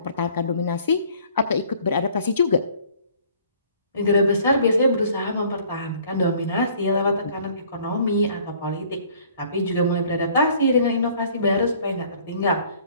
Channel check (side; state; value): both; inverted; correlation -0.56